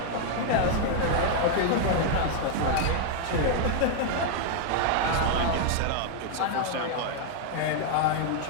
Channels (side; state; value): both; different; correlation 0.00